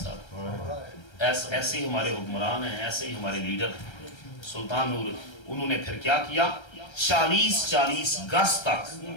ایسے ہی ہمارے حکمران ہیں، ایسے ہی ہمارے لیڈر۔ سلطان نور انہوں نے پھر کیا کیا، 40 گز تک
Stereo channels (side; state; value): right; late; 1.3 ms